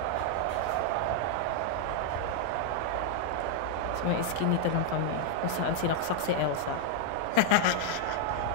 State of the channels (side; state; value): both; different; correlation -0.01